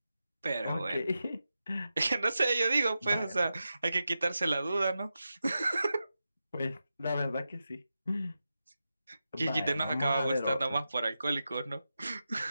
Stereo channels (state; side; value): inverted; both; correlation -0.90